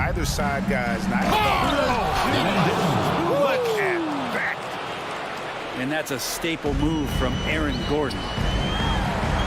side, guys. Look at that. And that's a staple move from Aaron Gordon.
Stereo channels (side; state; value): both; identical; correlation 1.00